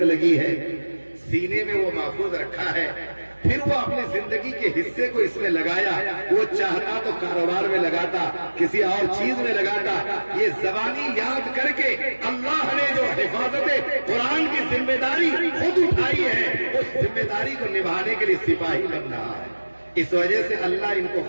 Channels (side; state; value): both; inverted; correlation -1.00